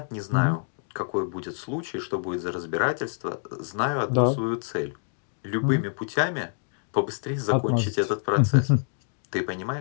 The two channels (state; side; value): silent; right; 60 dB below the other